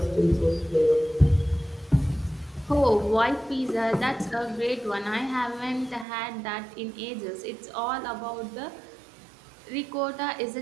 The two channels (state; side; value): drops out; left; at 6.1 s